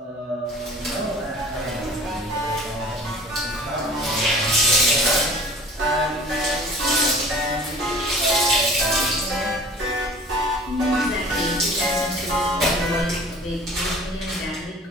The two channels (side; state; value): both; normal; correlation 0.45